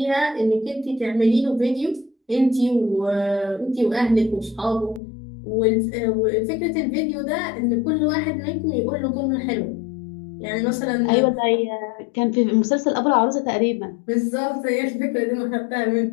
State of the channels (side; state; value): right; drops out; at 5.0 s